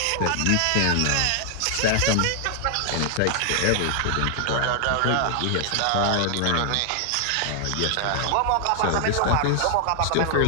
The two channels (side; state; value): both; different; correlation 0.00